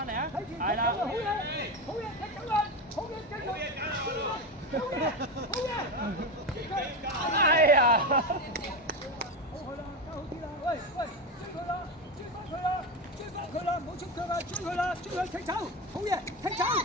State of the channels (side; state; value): both; normal; correlation 0.17